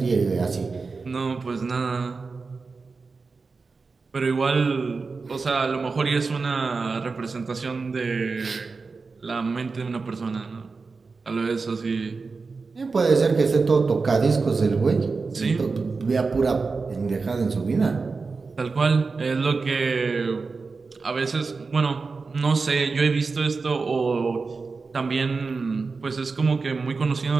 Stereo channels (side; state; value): left; quieter; 4.4 dB